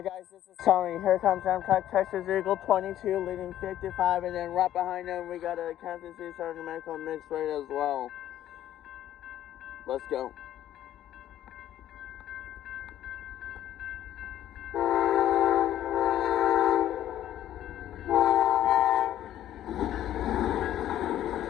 guys, this is Tony. Here comes Amtrak Texas Eagle 22 leading 55, and then right behind them we got a Kansas City Southern American mixed rate as well. Let's go.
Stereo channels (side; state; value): right; quieter; 12.2 dB